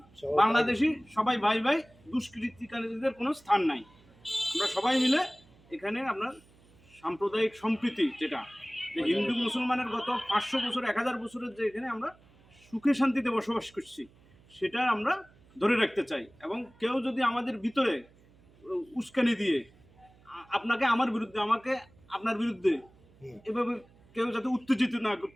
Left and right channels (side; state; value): right; noise; hum, 28 dB below the sound